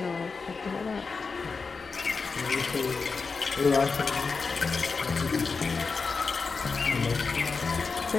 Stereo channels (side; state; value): right; quieter; 4.7 dB